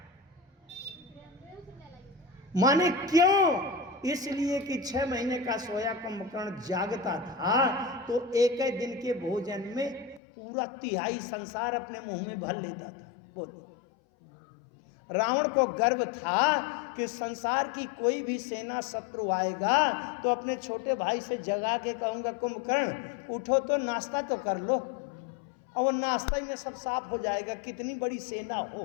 माने क्यों? इसलिए कि 6 महीने का सोया कुंभकर्ण जागता था तो एक ही दिन के भोजन में पूरा 1/3 संसार अपने मुंह में भर लेता था। बोलो, रावण को गर्व था कि संसार की कोई भी सेना शत्रु आएगा तो अपने छोटे भाई से जगा के कहूंगा, कुंभकर्ण उठो तो नाश्ता तो कर लो, और वो नाश्ता ही में सब साफ हो जाएगा, कितनी बड़ी सेना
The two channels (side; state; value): right; drops out; at 10.2 s